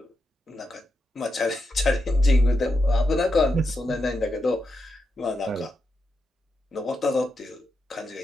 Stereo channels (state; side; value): normal; both; correlation 0.86